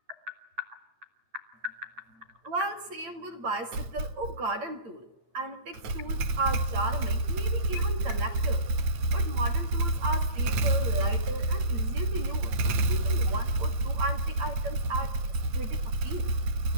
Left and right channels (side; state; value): left; late; 9.1 ms